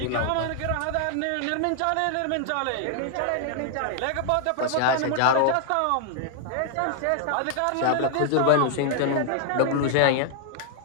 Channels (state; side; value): different; both; correlation 0.00